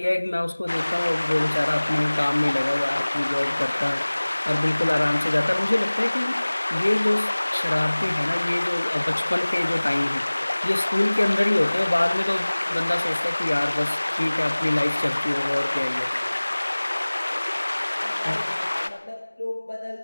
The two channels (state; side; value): inverted; both; correlation -1.00